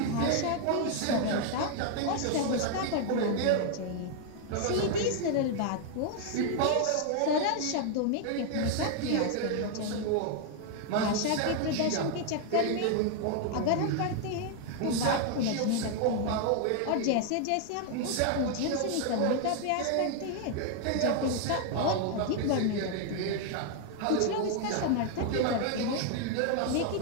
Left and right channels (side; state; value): both; different; correlation 0.00